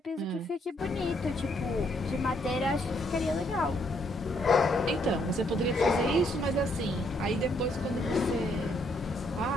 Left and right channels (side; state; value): both; normal; correlation 0.71